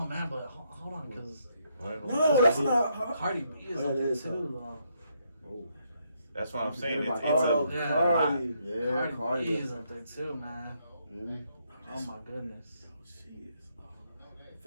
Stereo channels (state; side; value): inverted; both; correlation -0.75